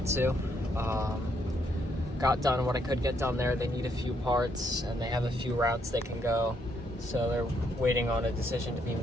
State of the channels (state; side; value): normal; both; correlation 0.74